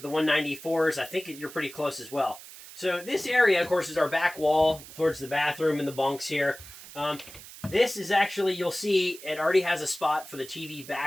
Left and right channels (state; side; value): noise; right; hiss, 16 dB below the sound